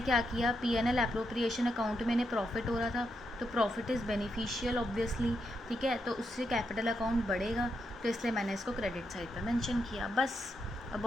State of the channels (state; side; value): normal; both; correlation 0.82